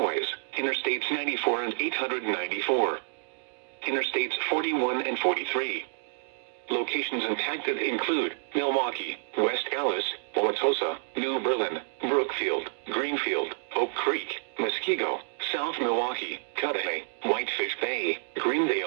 Interstates 94 and 894. Interstates 41 and 43. Locations impacted include Milwaukee, West Allis, Wauwatosa, New Berlin, Brookfield, Greenfield, Oak Creek, Muskego, South Milwaukee, Cudahy, Whitefish Bay,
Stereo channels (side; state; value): left; silent; digital silence